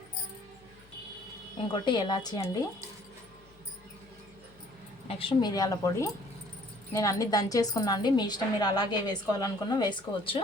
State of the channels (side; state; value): left; noise; hum, 28 dB below the sound